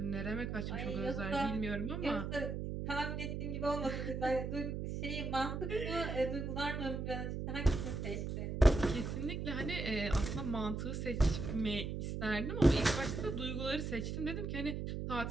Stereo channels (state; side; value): noise; right; hum, 3 dB below the sound